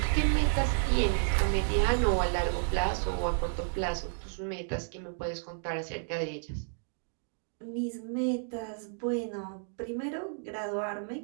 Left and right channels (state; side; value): silent; left; digital silence